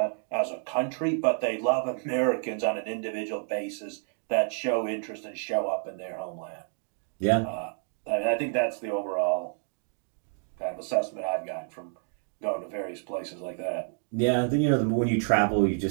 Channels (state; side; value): silent; left; 59 dB below the other